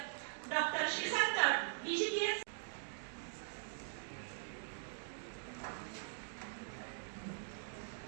डॉक्टर श्रीकांत डीजीपीएस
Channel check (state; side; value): silent; left; digital silence